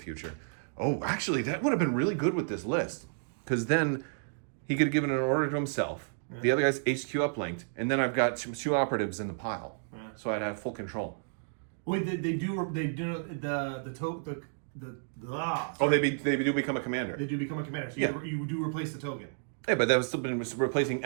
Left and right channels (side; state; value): left; silent; digital silence